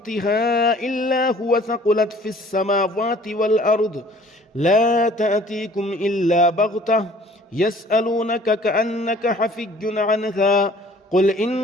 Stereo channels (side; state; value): both; normal; correlation 0.53